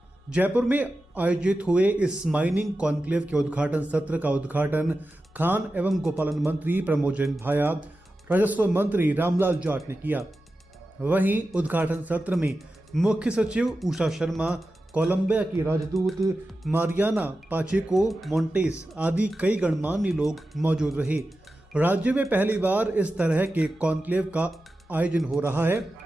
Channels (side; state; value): both; normal; correlation 0.93